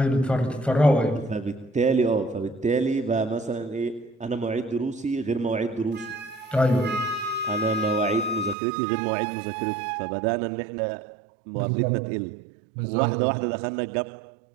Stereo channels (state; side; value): drops out; left; at 8.6 s